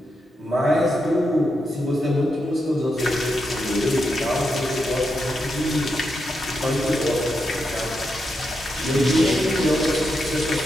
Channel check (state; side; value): normal; both; correlation 0.85